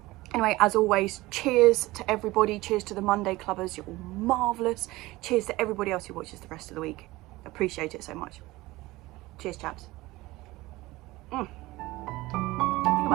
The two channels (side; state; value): left; quieter; 19.5 dB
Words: Anyway, as always, cheers to everybody. Cheers to the Monday Clubbers. You're all marvellous. Cheers to everybody else who watches the rest of the week. Appreciate it so much. Cheers, chaps. I think I